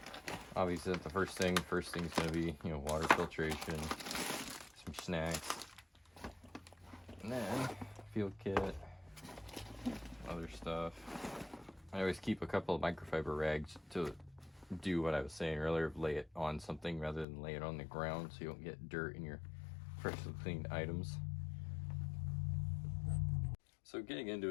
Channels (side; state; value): right; drops out; at 17.2 s